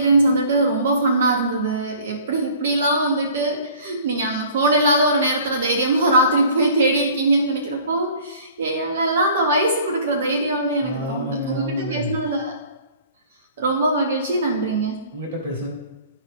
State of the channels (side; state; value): both; inverted; correlation -0.51